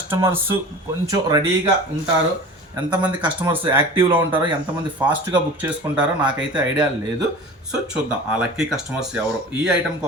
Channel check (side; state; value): both; normal; correlation 0.37